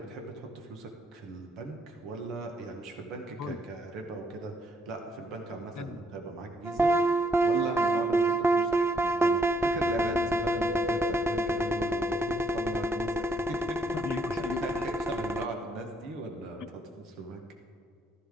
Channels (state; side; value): normal; both; correlation 0.71